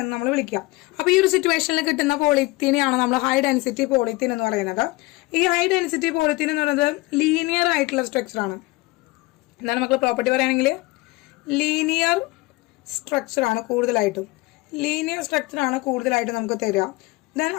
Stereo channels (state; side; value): quieter; right; 22.5 dB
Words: നമ്മൾ വിളിക്കുക. അപ്പൊ ഈ ഒരു സിറ്റുവേഷനിൽ കിട്ടുന്ന പോളിത്തീനെയാണ് നമ്മൾ ഹൈ ഡെൻസിറ്റി പോളിത്തീൻ എന്ന് പറയുന്നത്. ഈ ഹൈ ഡെൻസിറ്റി പോളിത്തീൻ എന്ന് പറയുന്നത് ലീനിയർ ആയിട്ടുള്ള സ്ട്രക്ചർ ആണ്. എന്താണ് മക്കൾ പ്രോപ്പർട്ടി പറയുകയാണെങ്കിൽ ലീനിയർ സ്ട്രക്ചർ ആണ് കൂടുതലായിട്ടും. ലീനിയർ സ്ട്രക്ചർ ആണ് കൂടുതലായിട്ടും നമുക്ക് തരിക. ദെൻ